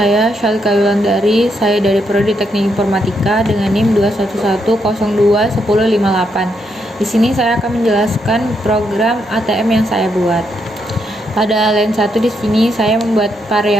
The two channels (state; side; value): normal; both; correlation 0.79